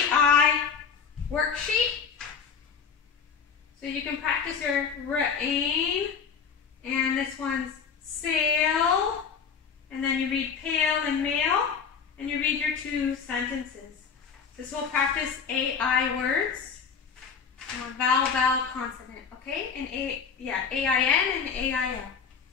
worksheet. So you can practice your rain, and this one's sail, and then you read pale and male, and you read your 2 sentences. This will practice AI words, vowel, vowel, consonant, okay? And A-I-N and A-I-L.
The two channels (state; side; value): quieter; right; 6.3 dB